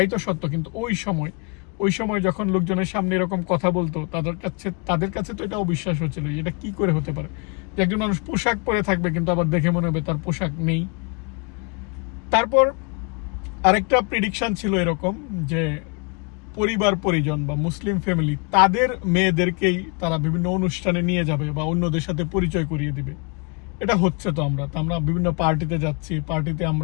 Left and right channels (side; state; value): right; quieter; 32.4 dB